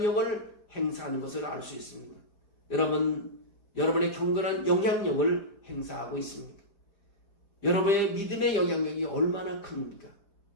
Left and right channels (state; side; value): late; right; 4.9 ms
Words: 행사하는 것을 알 수 있습니다. 여러분의 경건한 영향력을 행사하고 있습니까? 여러분의 믿음의 영향력이 얼마나 큽니까?